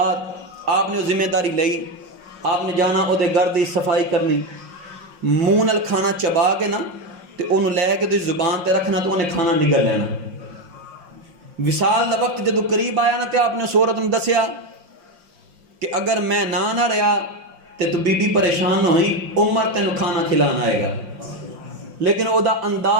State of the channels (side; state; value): left; late; 5.6 ms